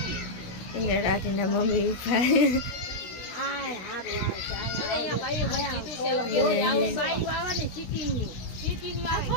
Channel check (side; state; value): right; late; 16 ms